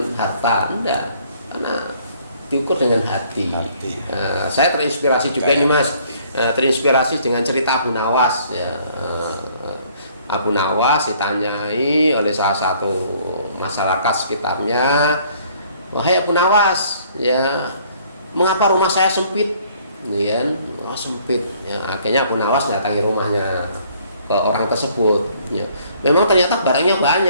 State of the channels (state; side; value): inverted; both; correlation -0.60